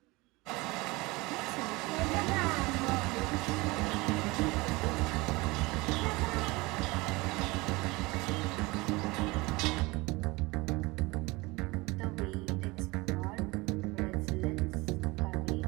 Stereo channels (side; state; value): left; quieter; 23.1 dB